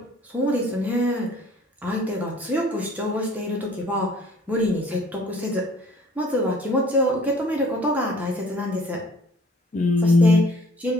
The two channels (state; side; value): normal; both; correlation 0.55